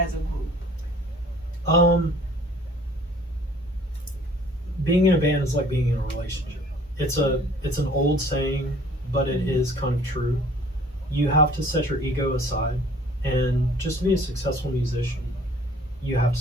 a group? Being in a band is like being in a relationship. It's an old saying, but it is kind of true. You have to set your ego aside, and just to be a successful musician, you have to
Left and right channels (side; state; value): both; normal; correlation 0.53